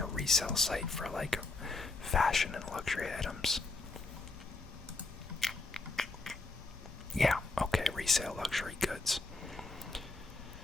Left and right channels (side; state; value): right; quieter; 3.5 dB